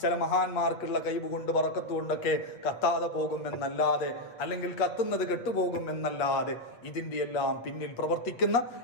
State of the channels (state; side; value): late; right; 8.4 ms